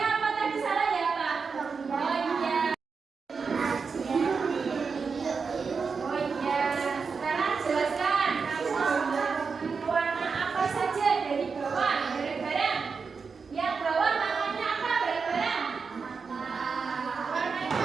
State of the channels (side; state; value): left; quieter; 5.2 dB